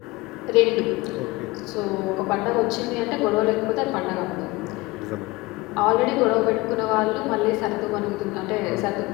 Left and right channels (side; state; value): right; quieter; 21.8 dB